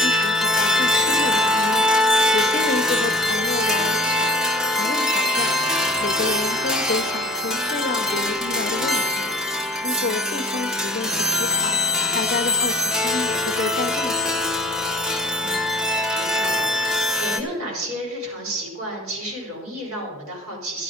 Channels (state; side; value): normal; both; correlation 0.45